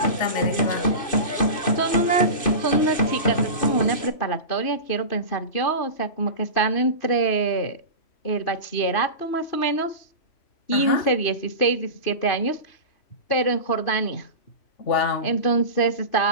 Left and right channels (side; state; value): right; late; 2.5 ms